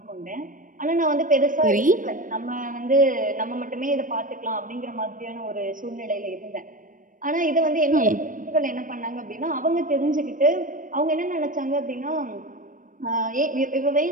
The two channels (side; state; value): left; late; 0.38 ms